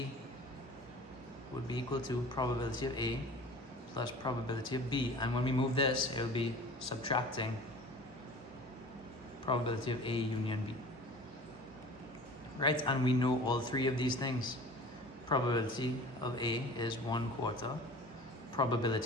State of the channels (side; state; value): both; normal; correlation 0.42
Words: would be equal to probability of A plus probability of B. And when we move this, it will be subtracting probability of A union B. Right, and we know all three of these things. Probability of A is 1/4.